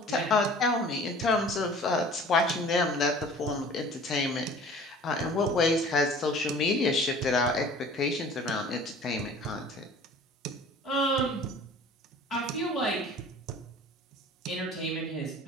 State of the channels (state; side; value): normal; both; correlation 0.46